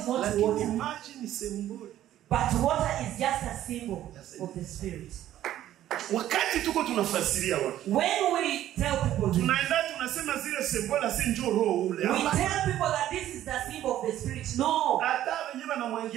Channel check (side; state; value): left; quieter; 12.6 dB